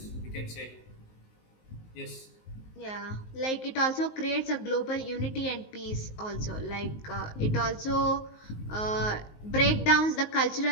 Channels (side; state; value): right; late; 19 ms